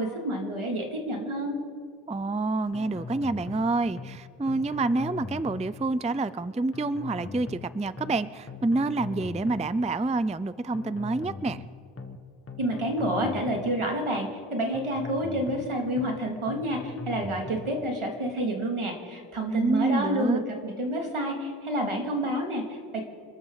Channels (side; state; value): both; normal; correlation 0.49